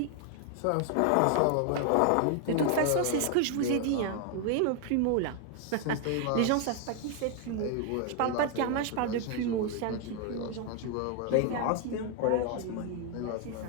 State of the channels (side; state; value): both; different; correlation 0.00